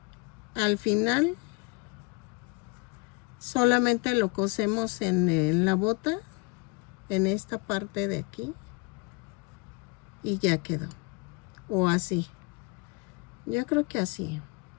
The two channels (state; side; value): quieter; right; 28.6 dB